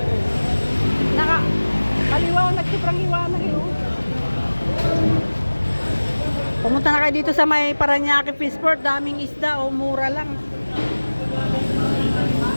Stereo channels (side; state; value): both; inverted; correlation -1.00